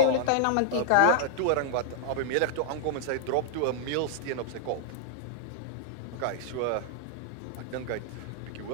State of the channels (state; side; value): different; both; correlation -0.01